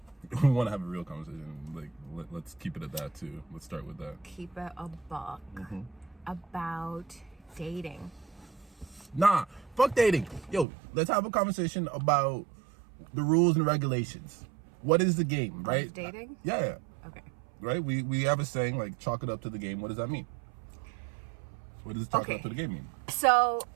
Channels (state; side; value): drops out; left; at 10.7 s